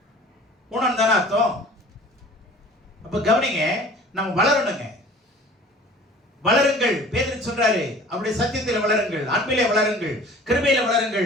ஊனம் தானே அர்த்தம். அப்ப கவனிங்க, நம்ம வளரணுங்க. வளருங்கள், பேதுரு சொல்றாரு, அப்படி சத்தியத்தில் வளருங்கள், அன்பிலே வளருங்கள், கிருபையில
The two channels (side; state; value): both; normal; correlation 0.46